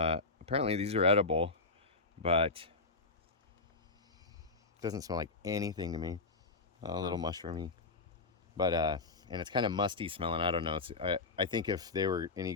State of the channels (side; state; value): right; quieter; 3.7 dB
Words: apparently these are edible, but it doesn't smell like anything to me. A little mushroomy. But and it's kind of musty smelling. I don't know. I think if they were any